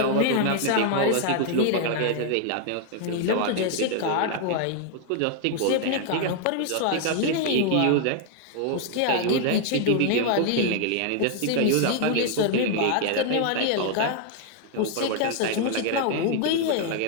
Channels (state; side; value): different; both; correlation 0.00